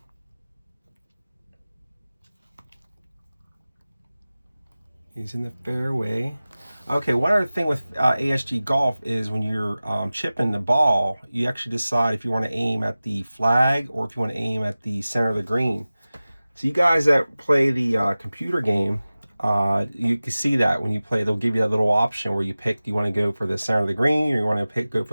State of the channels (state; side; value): inverted; both; correlation -0.97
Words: He's in the fairway. Okay, one other thing with ASG Golf is when you're chipping the ball, you actually decide if you want to aim at the flag or if you want to aim at the center of the green. So you guys that play the computer game, you can see that when you play, they'll give you that little option where you pick, do you want to go for the center of the green or you want to go